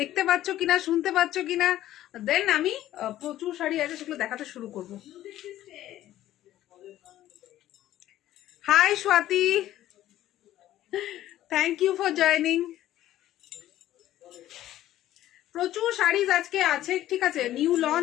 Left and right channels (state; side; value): quieter; right; 13.6 dB